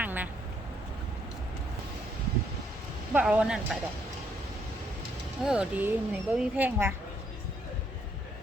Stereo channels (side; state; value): both; normal; correlation 0.71